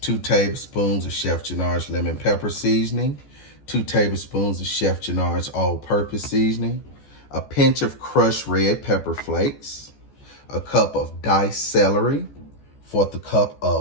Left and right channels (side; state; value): right; late; 14 ms